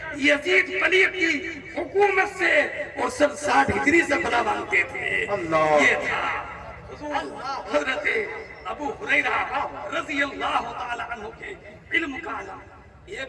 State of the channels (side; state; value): both; identical; correlation 1.00